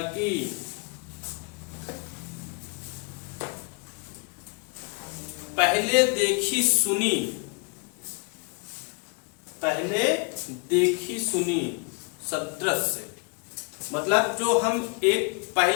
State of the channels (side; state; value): right; quieter; 33.4 dB